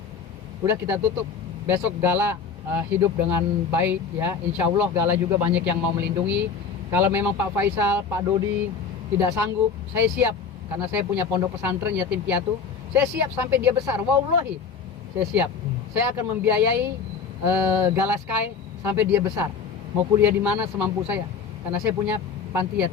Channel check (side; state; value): right; quieter; 6.0 dB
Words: udah kita tutup. Besok Gala hidup dengan baik ya, insya Allah Gala juga banyak yang mau melindungi. Kalau memang Pak Faisal, Pak Dodi tidak sanggup, saya siap, karena saya punya pondok pesantren yatim piatu, saya siap sampai dia besar, wallahi saya siap, saya akan membiayai Gala Sky sampai dia besar, mau kuliah di mana semampu saya, karena saya punya panti